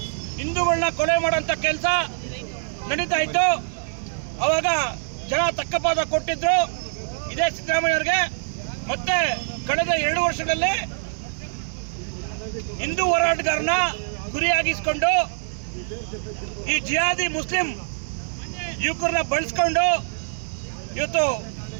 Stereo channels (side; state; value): left; silent; digital silence